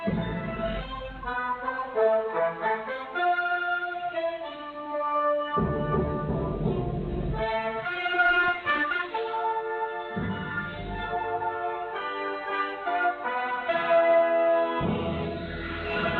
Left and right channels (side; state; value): both; identical; correlation 1.00